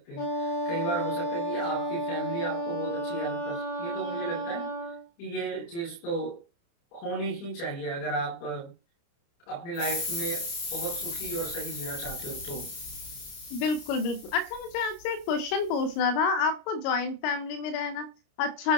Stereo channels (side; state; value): right; late; 29 ms